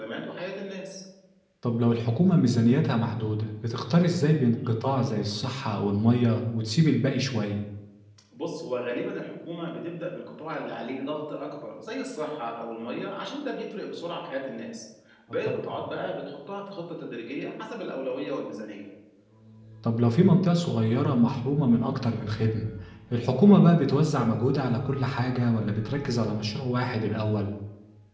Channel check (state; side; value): identical; both; correlation 1.00